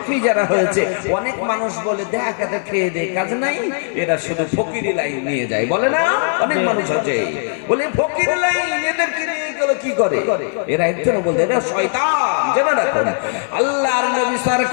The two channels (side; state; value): right; silent; 67 dB below the other